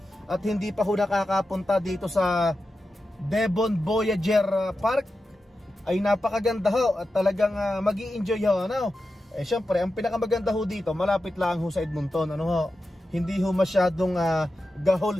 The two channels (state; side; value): normal; both; correlation 0.91